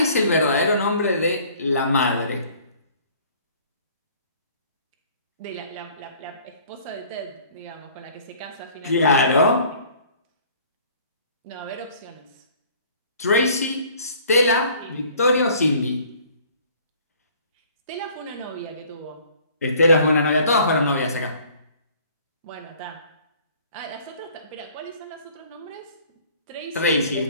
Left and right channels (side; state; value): both; inverted; correlation -0.54